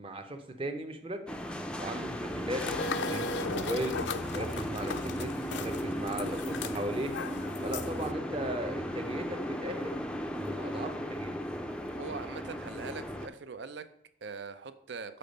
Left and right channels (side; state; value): both; normal; correlation 0.54